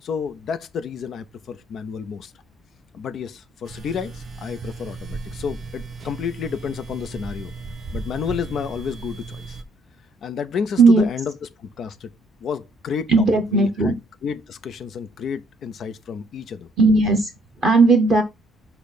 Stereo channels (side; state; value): both; normal; correlation 0.67